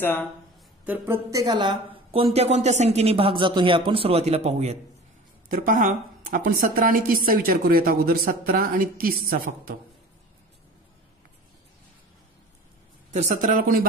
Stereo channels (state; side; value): normal; both; correlation 0.40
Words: तर प्रत्येकाला कोणत्या कोणत्या संख्येने भाग जातो हे आपण सुरुवातीला पाहूयात. तर पहा, आपण 17 आणि 30चा विचार करूयात अगोदर. 17 आणि 30चा फक्त. तर 17ला कोणी